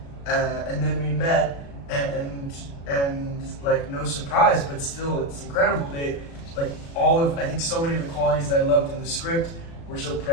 and then we met, and like no surprise, but still it's incredible. They I think so many of the qualities that I loved in the script were so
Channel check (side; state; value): right; late; 36 ms